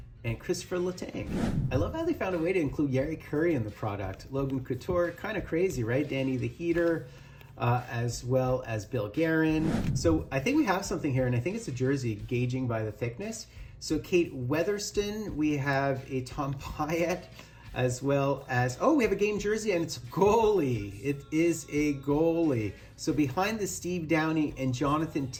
and Christopher Letang. I love how they found a way to include Yari Curry in the product. Logan Couture, kind of crazy, right? Danny the Heater, as well as Bill Guerin. So I think we have something here, and I think it's a jersey, gauging by the thickness. So Kate Weatherston, we have a Tom Pyatt, as well as, oh, we have a game jersey, and it's a goalie. It is a goalie. So behind the Steve Downey and Jonathan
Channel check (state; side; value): identical; both; correlation 1.00